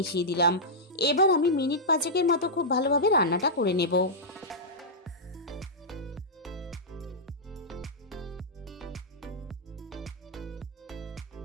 দিলাম। এবার আমি মিনিট 5 মতো খুব ভালোভাবে রান্নাটা করে নেব।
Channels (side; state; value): both; normal; correlation -0.09